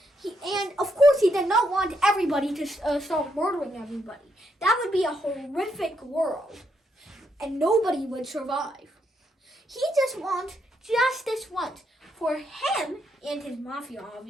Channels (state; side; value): normal; both; correlation 0.78